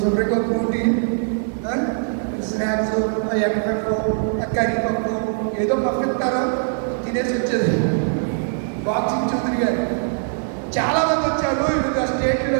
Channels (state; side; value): silent; left; 65 dB below the other